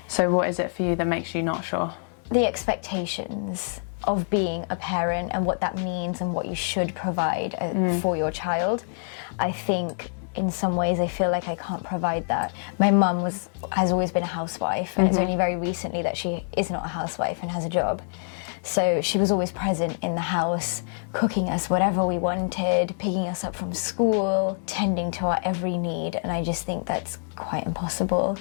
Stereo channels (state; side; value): silent; right; digital silence